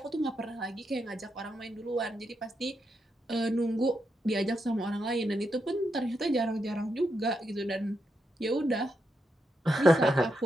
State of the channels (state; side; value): normal; both; correlation 0.83